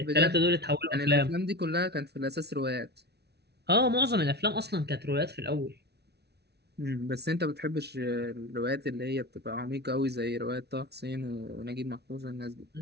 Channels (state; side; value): late; left; 0.49 ms